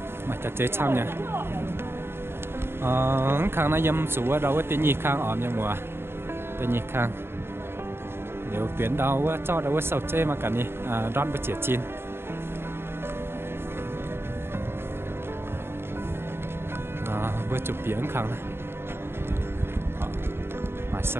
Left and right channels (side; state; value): left; late; 0.11 ms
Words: mà chăn chê xong nha khang nó dâm sủ ở đâu á tí nhi khang ổm nha mùa tí nhi khang nếu tuyến đâu á cho đâu á sầu chê mà cả nhi đón với chĩa chín vừa chụp biển khang này mà